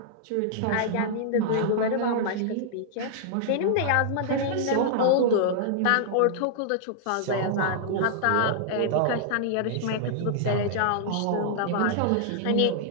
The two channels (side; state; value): both; different; correlation -0.01